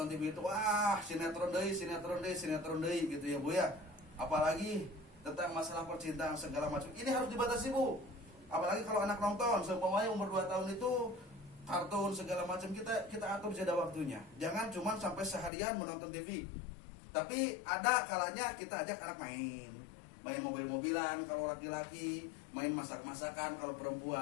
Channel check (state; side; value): drops out; right; at 15.5 s